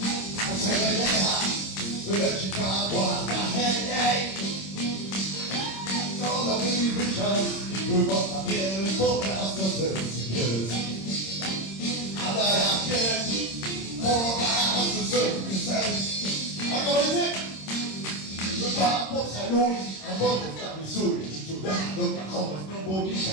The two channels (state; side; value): late; right; 26 ms